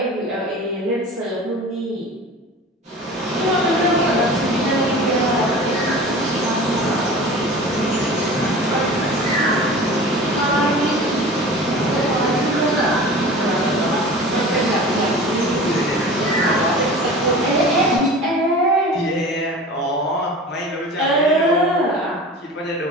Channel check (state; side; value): normal; both; correlation 0.38